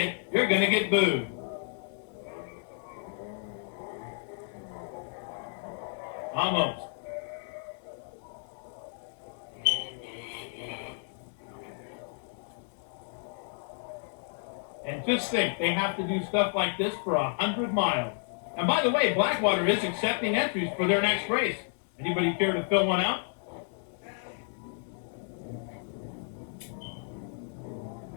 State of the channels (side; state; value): right; silent; 57 dB below the other